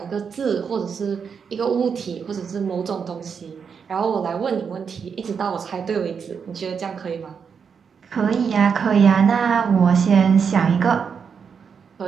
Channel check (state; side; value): quieter; left; 6.4 dB